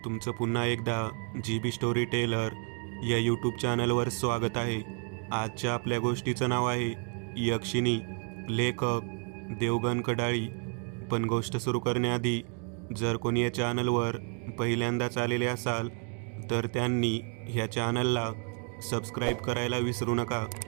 तुमचं पुन्हा एकदा GB स्टोरी टेलर या यूट्यूब चॅनलवर स्वागत आहे. आजच्या आपल्या गोष्टीचं नाव आहे यक्षिणी. लेखक देवगण कडाळी. पण गोष्ट सुरू करण्याआधी जर कोणी या चॅनलवर पहिल्यांदाच आलेले असाल तर त्यांनी ह्या चॅनलला सबस्क्राईब करायला विसरू नका.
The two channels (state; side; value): quieter; left; 38.7 dB